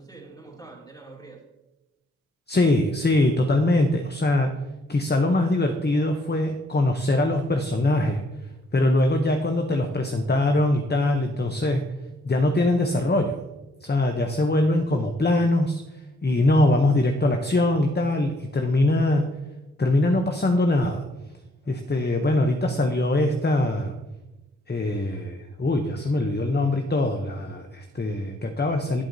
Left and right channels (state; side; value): normal; both; correlation 0.69